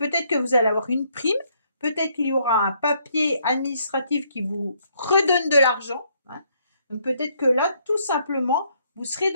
que vous allez avoir une prime, peut-être qu'il y aura un papier administratif qui vous redonne de l'argent. Hein. Donc peut-être que là, tout simplement, vous serez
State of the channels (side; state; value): both; inverted; correlation -0.70